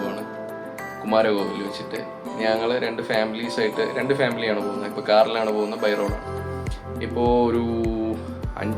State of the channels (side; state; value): both; identical; correlation 1.00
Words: കുമാരകോവിൽ വെച്ചിട്ട്. ഞങ്ങൾ രണ്ട് ഫാമിലിയാണ് പോകുന്നത്. ഇപ്പോൾ കാറിലാണ് പോകുന്നത്, ബൈ റോഡാണ്. ഇപ്പോൾ ഒരു